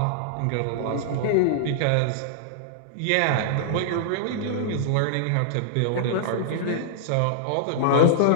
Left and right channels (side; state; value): both; different; correlation -0.01